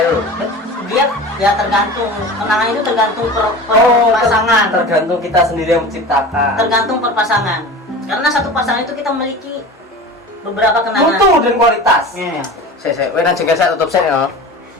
Dia ya tergantung kenangan itu tergantung pasangan. Tergantung kita sendiri yang menciptakan. Tergantung per pasangan. Karena satu pasangan itu kita memiliki beberapa kenangan. Mutu dan kualitas. Iya. Saya nang jengkel saya tutup saya ya.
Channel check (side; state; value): both; normal; correlation 0.34